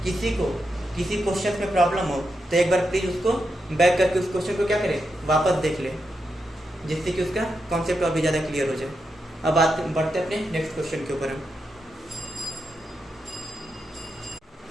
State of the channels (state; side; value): normal; both; correlation 0.85